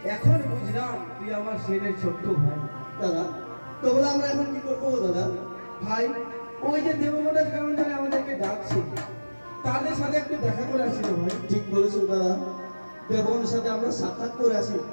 এখন বুঝলাম তুই আমার ছেলের ছোট্ট ভাই। দাদা তো বলে আমরা এখন কি করবো দাদা? ভাই, ওই যে দেবমোটা কেমন জানে আমাদেরকে ডাকছে, তাদের সাথে একটু দেখা করে আসি রে ভাই। ঠিক বলেছো দাদা, দেবনের সাথে আমরা সাক্ষাৎ করে আসি।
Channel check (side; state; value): both; inverted; correlation -1.00